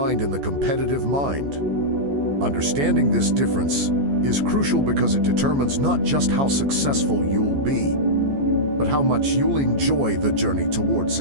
and the competitive mind. Understanding this difference is crucial because it determines not just how successful you'll be, but how much you'll enjoy the journey toward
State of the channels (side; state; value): left; late; 14 ms